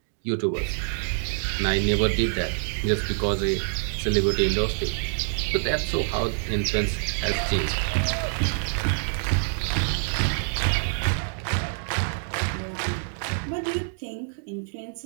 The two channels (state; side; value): silent; left; digital silence